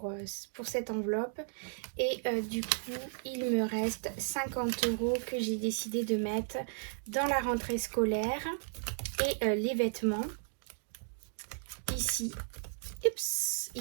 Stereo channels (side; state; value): left; silent; digital silence